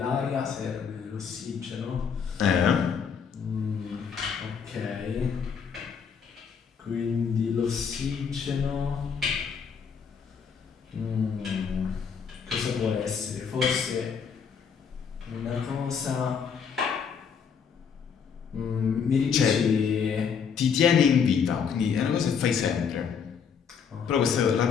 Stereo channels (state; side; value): quieter; right; 6.7 dB